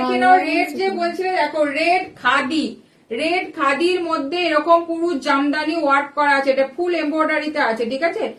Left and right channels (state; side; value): identical; both; correlation 1.00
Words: নাও, রেড যে বলছিলে দেখো, রেড খাদি, রেড খাদির মধ্যে এরকম পুরো জামদানি ওয়ার্ক করা আছে, এটা ফুল এমব্রয়ডারিতে আছে, ঠিক আছে,